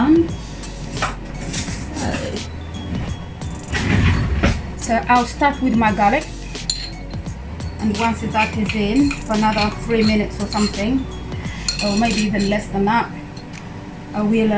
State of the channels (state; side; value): identical; both; correlation 1.00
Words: So I'll start with my garlic, and once that is in for another 3 minutes or something, or maybe even less than that, I